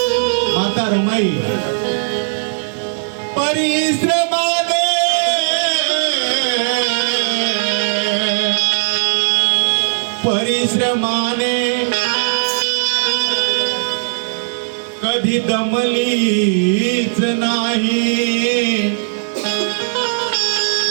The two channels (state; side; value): silent; left; digital silence